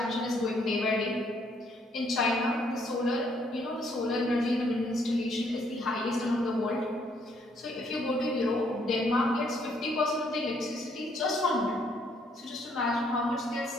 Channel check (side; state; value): both; normal; correlation 0.68